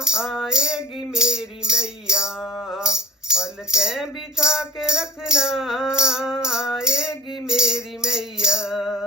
आएगी मेरी मैया, पलकें बिछा के रखना, आएगी मेरी मैया।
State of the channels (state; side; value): normal; both; correlation 0.43